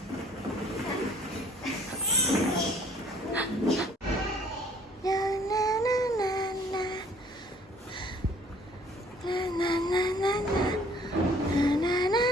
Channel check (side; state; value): both; normal; correlation 0.57